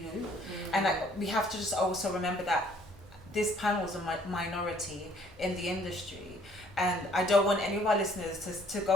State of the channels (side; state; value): both; normal; correlation 0.60